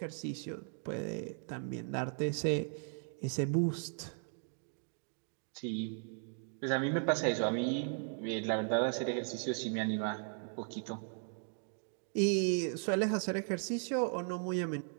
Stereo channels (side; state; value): left; silent; 53 dB below the other